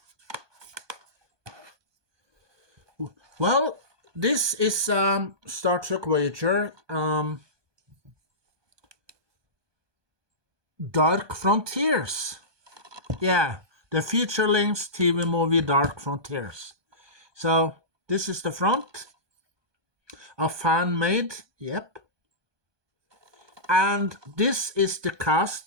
Well, this is Star Trek Voyager Dark Frontiers. Yeah, the feature-length TV movie Dark Frontiers. So this is the front. A fan made, yep. And this is the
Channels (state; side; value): late; left; 1.2 ms